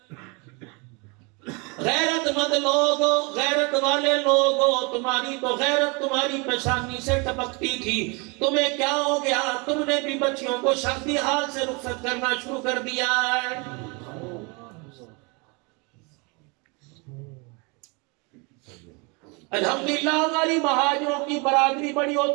غیرت مند لوگ، غیرت والے لوگ، تمہاری تو غیرت تمہاری پیشانی سے ٹپکتی تھی، تمہیں کیا ہو گیا؟ تم نے بھی بچیوں کو شادی حال سے رخصت کرنا شروع کر دیا ہے۔ الحمدللہ ہماری مہاجروں کی برادری بڑی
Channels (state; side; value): quieter; left; 30.3 dB